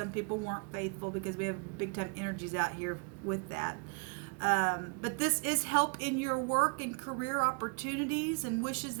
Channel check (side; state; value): left; quieter; 36.5 dB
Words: people weren't faithful because we have big time energies out here with that. But this is help in your work and career opportunities and wishes